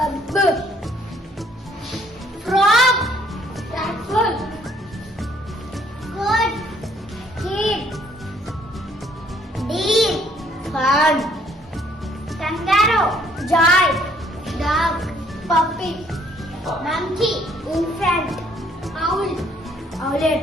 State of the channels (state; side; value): normal; both; correlation 0.64